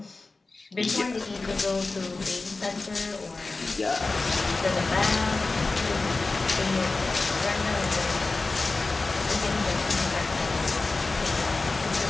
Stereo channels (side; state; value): right; quieter; 3.6 dB